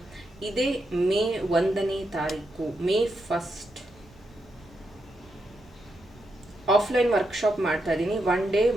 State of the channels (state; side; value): noise; right; rumble, 25 dB below the sound